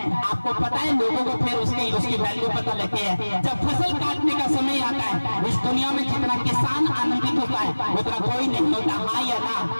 आपको पता है लोगों को फिर उसकी वैल्यू पता लगती है। जब फसल काटने का समय आता है इस दुनिया में जितना किसान आनंदित होता है उतना कोई नहीं होता, हाँ या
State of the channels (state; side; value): inverted; both; correlation -1.00